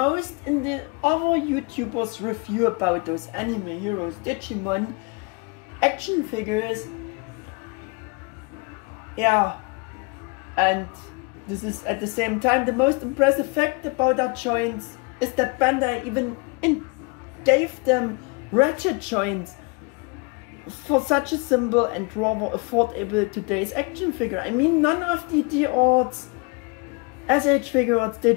in the other YouTubers' review about those Anime Heroes Digimon action figures, yeah, and this is at the same time the most impressive fact about our joints, is that Bandai even gave them ratchet joints for such a simple and rather affordable today's action figure. I mean, none of the D-Arts SH Figuarts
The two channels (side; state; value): right; quieter; 30.3 dB